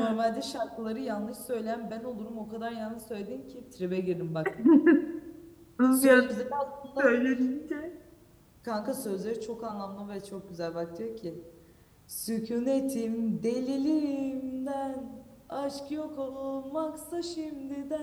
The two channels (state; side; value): identical; both; correlation 1.00